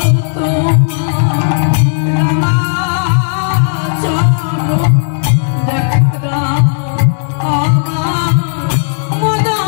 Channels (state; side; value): silent; right; digital silence